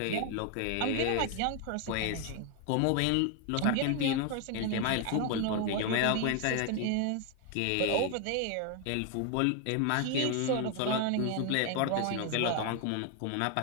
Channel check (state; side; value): different; both; correlation 0.01